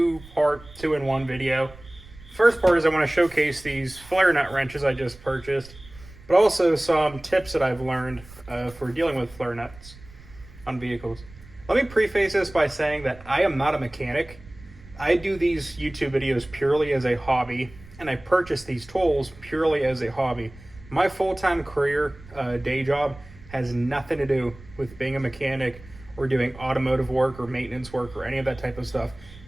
two-in-one video. First part is I want to showcase these flare nut wrenches I just purchased, but also some tips that I've learned for dealing with flare nuts on vehicles. Let me preface this by saying that I am not a mechanic. I do these YouTube videos purely as a hobby, and I purchase these tools purely as a hobby. My full-time career, day job, has nothing to do with being a mechanic or doing automotive work or maintenance work or any of that type of stuff.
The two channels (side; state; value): right; noise; rumble, 20 dB below the sound